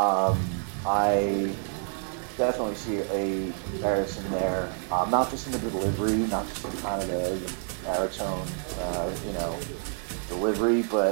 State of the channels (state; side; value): silent; left; 56 dB below the other